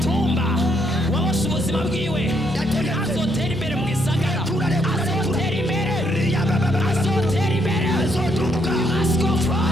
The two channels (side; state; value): both; normal; correlation 0.73